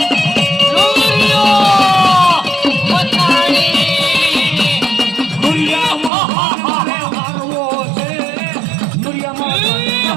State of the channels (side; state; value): left; drops out; at 6.1 s